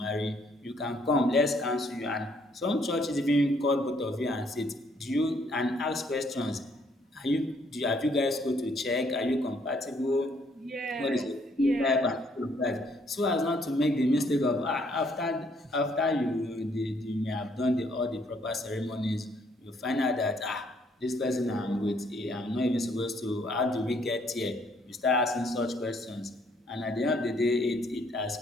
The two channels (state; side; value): normal; both; correlation 0.67